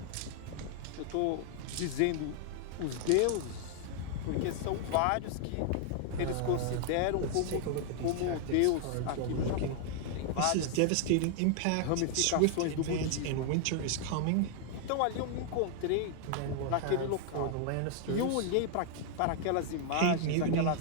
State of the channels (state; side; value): different; both; correlation 0.00